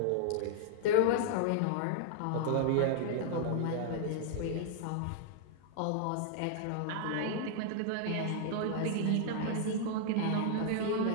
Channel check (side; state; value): both; different; correlation 0.00